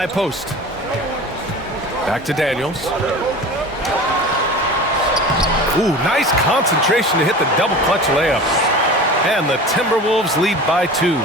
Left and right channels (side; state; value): both; normal; correlation 0.35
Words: post. Back to Daniels. Ooh, nice concentration to hit the double clutch layup. And the Timberwolves lead by 2.